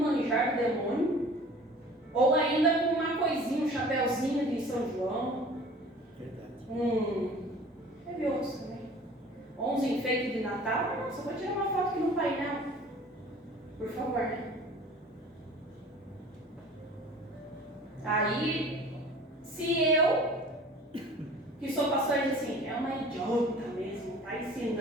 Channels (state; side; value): normal; both; correlation 0.45